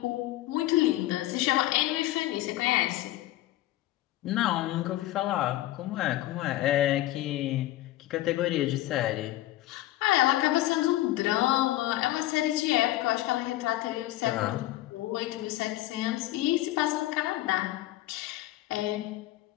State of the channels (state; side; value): quieter; right; 16.0 dB